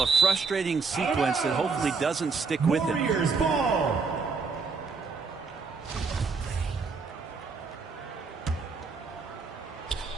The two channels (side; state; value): left; quieter; 4.7 dB